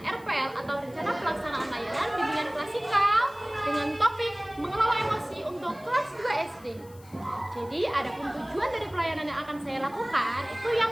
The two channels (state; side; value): noise; left; hiss, 25 dB below the sound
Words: atau Rencana Pelaksanaan Layanan Bimbingan Klasikal dengan topik mengelola emosi untuk kelas 2 SD. Jadi adapun tujuan dari pelayanan yang akan saya lakukan itu